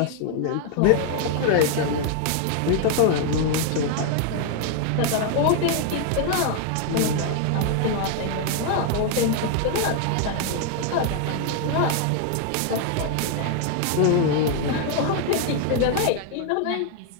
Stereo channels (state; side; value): different; both; correlation 0.00